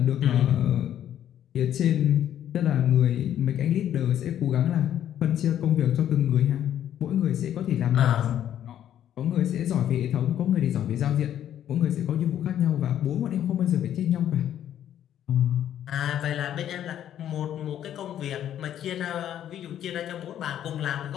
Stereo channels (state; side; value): quieter; right; 10.8 dB